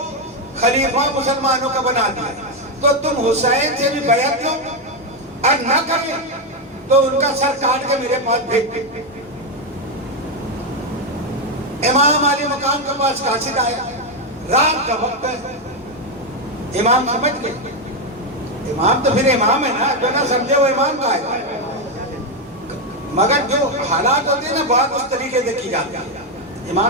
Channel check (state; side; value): normal; both; correlation 0.05